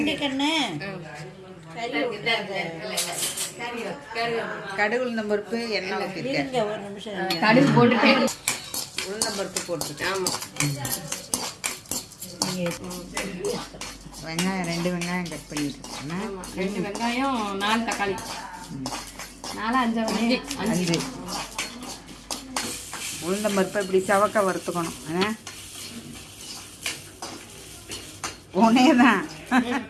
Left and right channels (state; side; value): identical; both; correlation 1.00